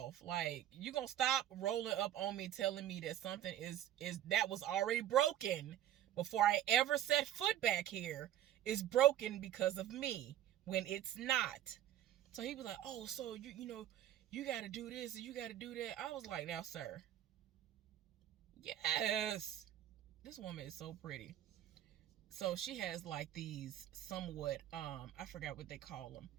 Like, you gonna stop rolling up on me telling me that something is that was already broken before I ever set foot back here is broken because of me when it's not. So he was like, oh, so you got to do this and you got to do that. I was like, now, sir, yes, this woman is so pretty. So she has like these somewhat, I forgot what they call them,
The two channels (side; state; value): left; quieter; 11.8 dB